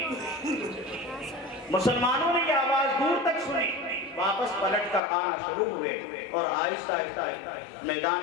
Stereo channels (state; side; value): drops out; right; at 5.0 s